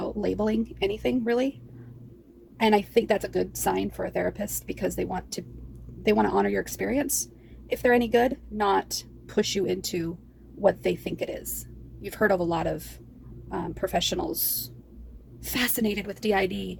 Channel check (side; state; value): both; identical; correlation 1.00